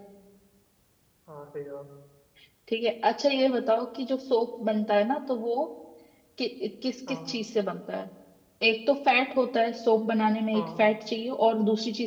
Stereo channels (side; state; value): both; identical; correlation 1.00